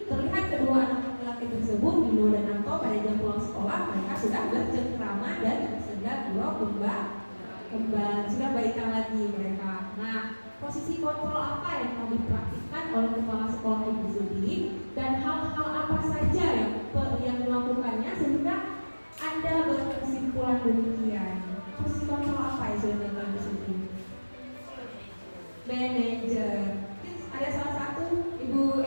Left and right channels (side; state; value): both; inverted; correlation -1.00